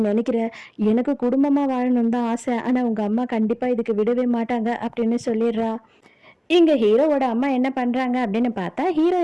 நினைக்கிற? எனக்கு குடும்பமா வாழணும்னு தான் ஆசை. ஆனா உங்க அம்மா கண்டிப்பா இதுக்கு விடவே மாட்டாங்க அப்படின்னு சொல்லிடுறா. இங்க ஹீரோவோட அம்மா என்ன பண்றாங்க அப்படின்னு பார்த்தா,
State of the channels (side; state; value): both; identical; correlation 1.00